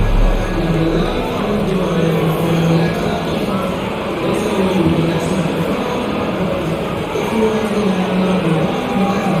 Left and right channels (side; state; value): both; identical; correlation 1.00